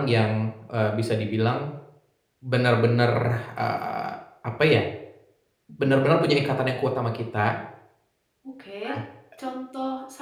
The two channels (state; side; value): identical; both; correlation 1.00